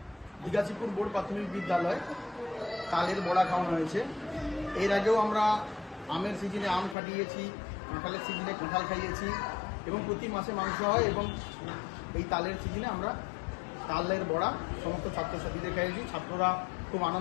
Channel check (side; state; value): right; drops out; at 7.0 s